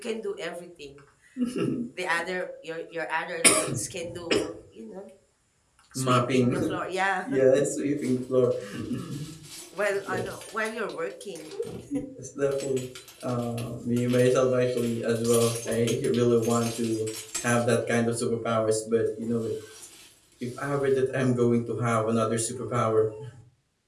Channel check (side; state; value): both; identical; correlation 1.00